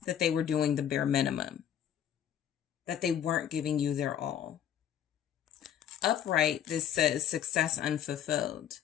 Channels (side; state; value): right; quieter; 9.9 dB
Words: that they were doing the bare minimum, that they weren't giving you their all. Upright, this says success unfulfilled.